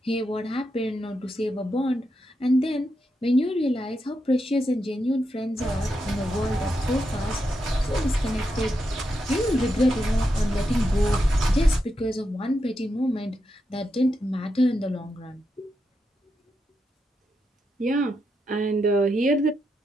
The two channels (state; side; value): normal; both; correlation 0.85